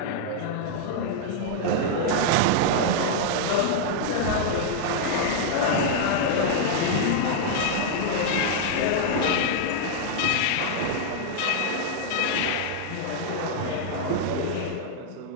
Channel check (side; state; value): both; different; correlation -0.01